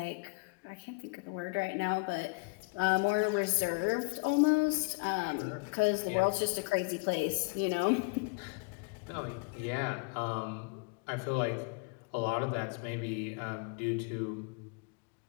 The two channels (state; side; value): quieter; right; 28.3 dB